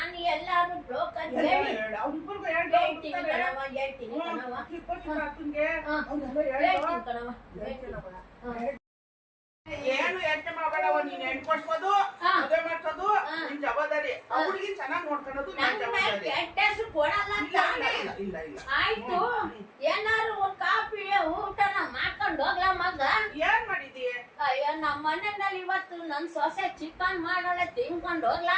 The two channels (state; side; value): identical; both; correlation 1.00